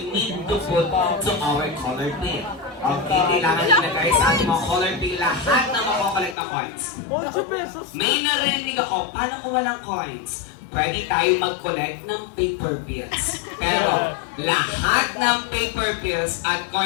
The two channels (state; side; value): drops out; right; at 6.4 s